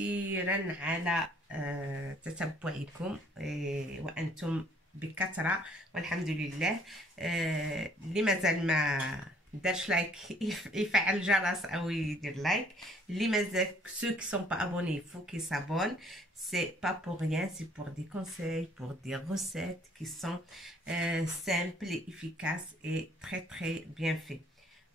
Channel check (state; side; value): normal; both; correlation 0.61